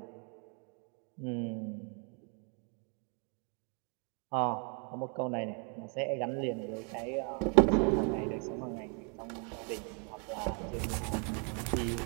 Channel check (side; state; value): left; quieter; 38.8 dB